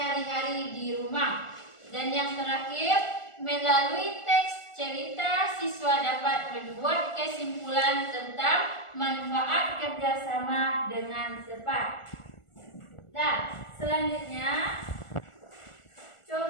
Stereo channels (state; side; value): late; right; 1.4 ms